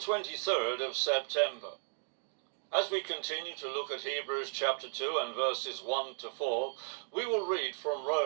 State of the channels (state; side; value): silent; left; digital silence